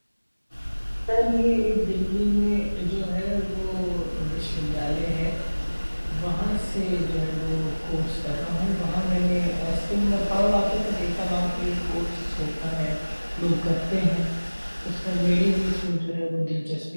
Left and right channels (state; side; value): inverted; both; correlation -1.00